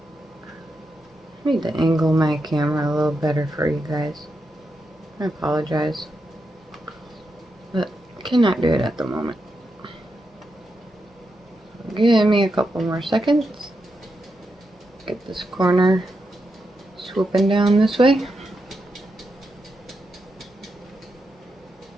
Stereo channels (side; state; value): both; normal; correlation 0.86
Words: I need to angle my camera a little better for you guys. I apologize, but I cannot do it at the moment. Give me a couple more seconds. Get this corner swooping down this way.